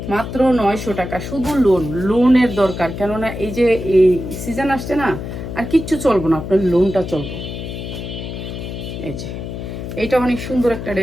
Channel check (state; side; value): noise; left; hum, 7 dB below the sound